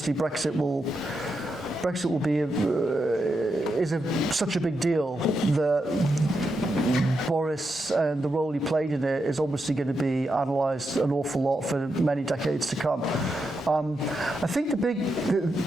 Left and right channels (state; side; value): normal; both; correlation 0.85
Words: Brexit will be such a big deal that Boris and the role he played in it is obviously going to be analysed an awful lot for many decades to come. I think the